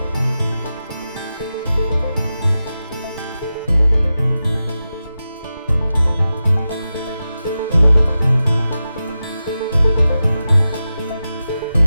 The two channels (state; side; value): inverted; both; correlation -0.92